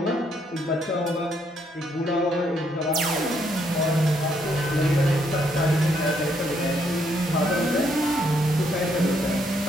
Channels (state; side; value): normal; both; correlation 0.73